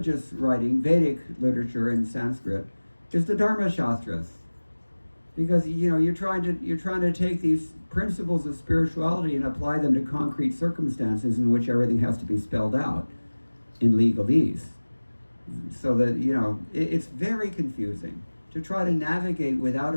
writing, Vedic literature in Sanskrit, is the Dharma Shastras. Because, you're trying to take these principles of spirituality and apply them to concrete circumstances in which everything has to be spelled out in legalese. So that, it's very confusing to try to navigate without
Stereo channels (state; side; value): inverted; both; correlation -1.00